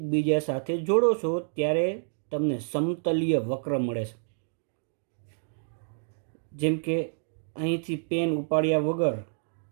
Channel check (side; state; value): left; silent; digital silence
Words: સાથે જોડો છો ત્યારે તમને સમતલીય વક્ર મળે છે। જેમ કે અહીંથી પેન ઉપાડ્યા વગર